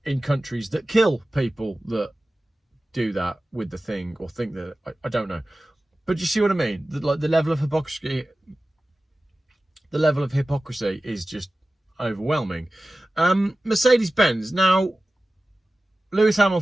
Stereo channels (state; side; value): normal; both; correlation 0.96